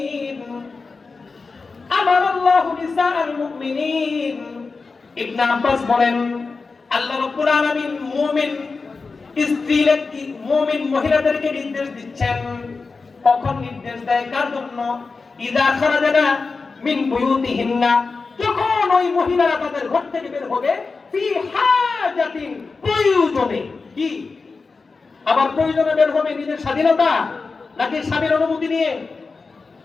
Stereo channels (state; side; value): quieter; right; 4.3 dB